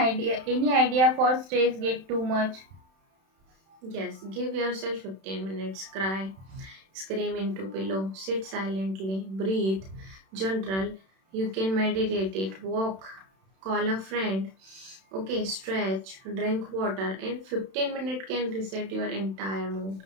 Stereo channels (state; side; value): late; left; 31 ms